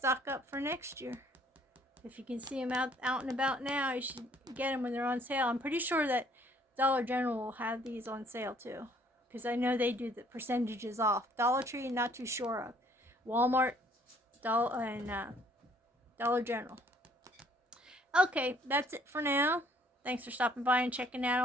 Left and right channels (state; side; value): normal; both; correlation 0.61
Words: up for next year. If you can see them out and about now, you should get them when they're on sale. I'm pretty sure that Dollar General will have these on sale too, because I know they do the percentages off. Dollar Tree, not too sure of. Walmart, Dollar General. Okay, that's it for now. Thanks for stopping by and checking out